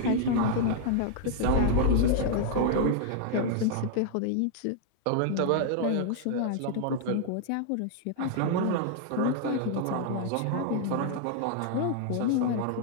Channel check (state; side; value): different; both; correlation -0.01